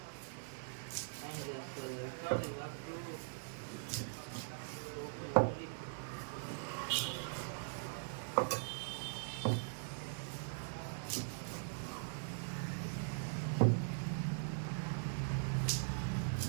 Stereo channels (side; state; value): left; silent; digital silence